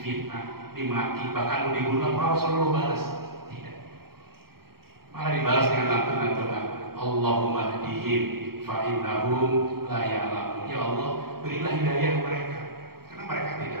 dimaki, bahkan mau dibunuh, apa Rasulullah balas? Tidak. Malah dibalas dengan lantunan doa, Allahumma hdihim fa innahum la ya'lamun. Ya Allah, berilah hidayah mereka karena mereka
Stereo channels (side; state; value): left; late; 0.94 ms